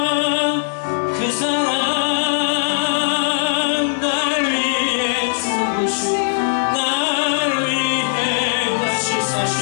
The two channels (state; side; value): silent; right; digital silence